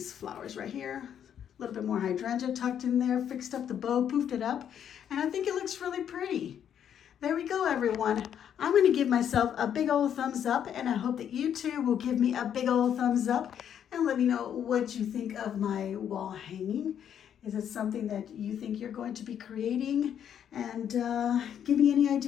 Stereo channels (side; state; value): right; quieter; 9.1 dB